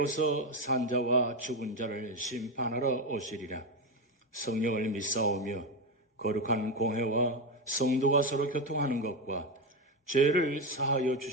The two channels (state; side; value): normal; both; correlation 0.12